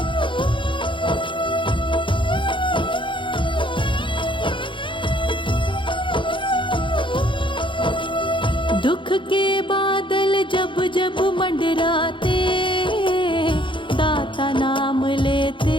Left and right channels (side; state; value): right; late; 0.24 ms